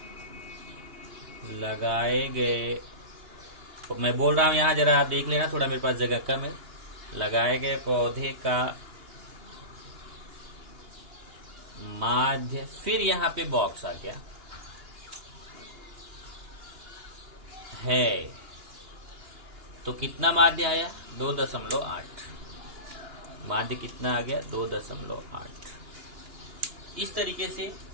लगाए गए, मैं बोल रहा हूँ यहाँ जरा आप देख लेना, थोड़ा मेरे पास जगह कम है। लगाए गए पौधे का माध्य, फिर यहाँ पे बॉक्स आ गया है, तो कितना माध्य आया 2.8। माध्य कितना आ गया 2.8। इस तरीके से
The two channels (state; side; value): late; left; 2.9 ms